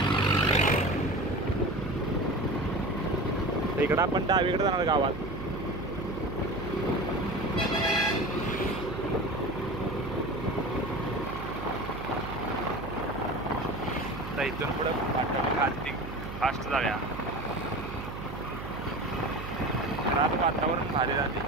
इकडं आपण डावीकडे जाणार गावात. तर इथून पुढे खालती फास्ट जाऊया. आज वातावरण भारी झाले,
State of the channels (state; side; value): noise; right; hum, 9 dB below the sound